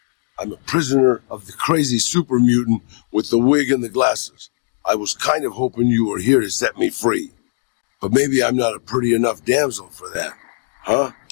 I'm a prisoner of the crazy super mutant with the wig and the glasses. I was kind of hoping you were here to set me free. But maybe I'm not a pretty enough damsel for that. Huh?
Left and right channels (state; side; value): silent; right; digital silence